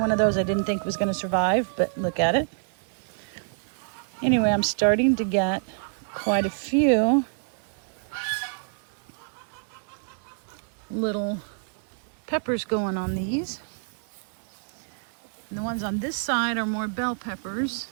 of those I didn't think was going to survive, but look at it. Anyway, I'm starting to get quite a few little peppers going on these. And the ones on this side are more bell peppers.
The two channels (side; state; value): left; silent; digital silence